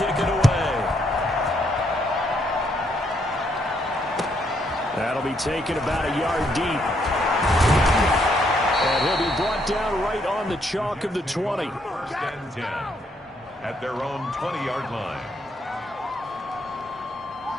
it away. That'll be taken about a yard deep. And he'll be brought down right on the chalk of the 20. 1st and 10 at their own 20-yard line.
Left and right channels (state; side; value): normal; both; correlation 0.73